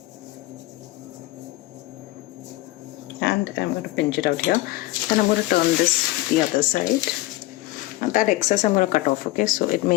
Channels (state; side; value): quieter; right; 18.1 dB